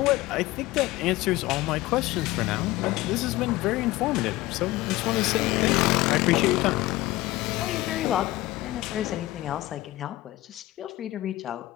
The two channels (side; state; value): right; quieter; 17.9 dB